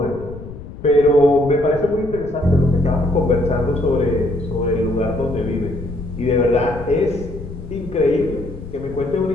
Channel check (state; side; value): noise; left; rumble, 13 dB below the sound